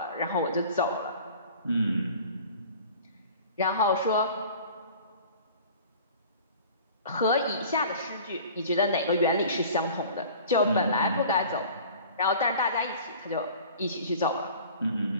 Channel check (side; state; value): both; inverted; correlation -0.44